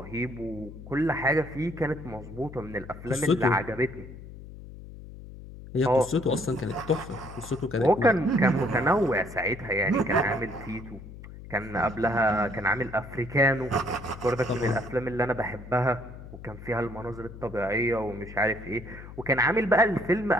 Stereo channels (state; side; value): noise; left; hum, 14 dB below the sound